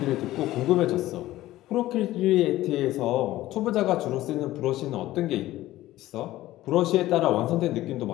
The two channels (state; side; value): quieter; right; 15.7 dB